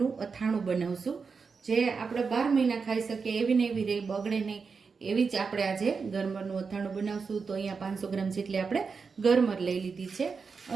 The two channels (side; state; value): left; quieter; 5.2 dB